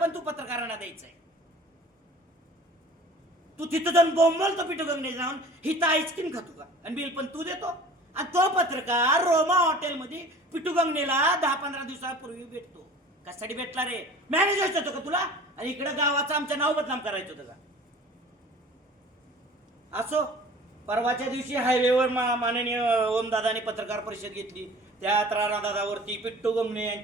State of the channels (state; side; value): normal; both; correlation 0.45